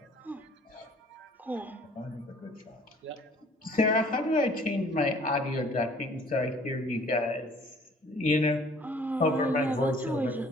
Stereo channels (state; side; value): normal; both; correlation 0.54